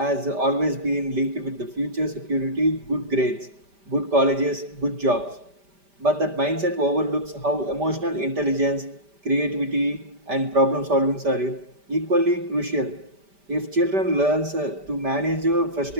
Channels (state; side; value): late; left; 5.1 ms